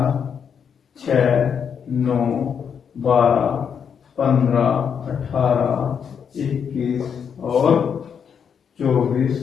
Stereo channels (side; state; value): right; quieter; 7.3 dB